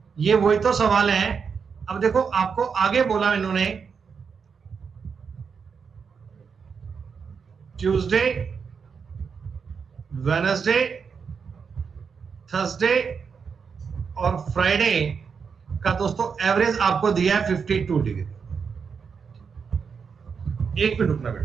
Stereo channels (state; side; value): quieter; left; 6.0 dB